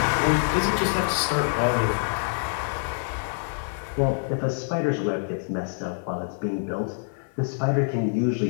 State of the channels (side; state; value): right; silent; 61 dB below the other